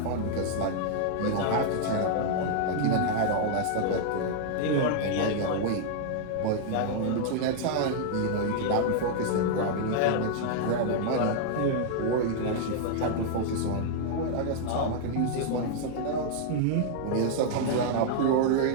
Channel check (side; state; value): both; different; correlation -0.01